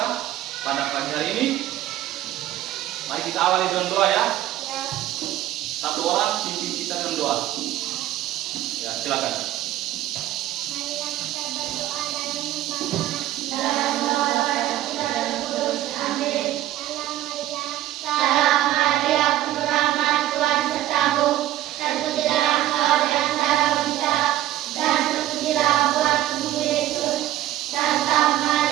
pada pagi hari ini, mari kita awali dengan doa ya. Ya. Satu orang pimpin kita dengan doa. Ya, silakan. Marilah kita berdoa dalam nama Bapa dan Kudus. Amin. Salam Maria, penuh rahmat, Tuhan sertamu. Terpujilah engkau di antara wanita, dan terpujilah buah tubuh Yesus. Santa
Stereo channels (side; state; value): left; quieter; 13.9 dB